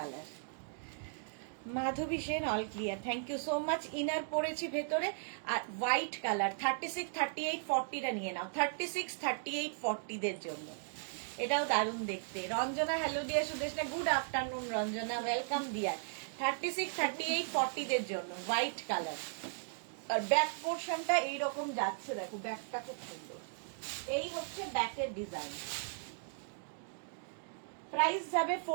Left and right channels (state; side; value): silent; left; digital silence